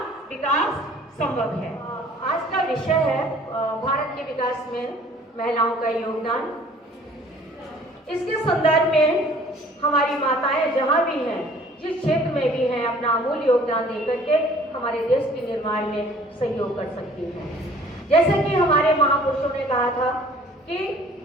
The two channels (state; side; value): normal; both; correlation 0.53